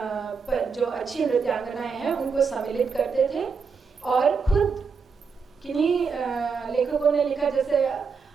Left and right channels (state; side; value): quieter; left; 5.4 dB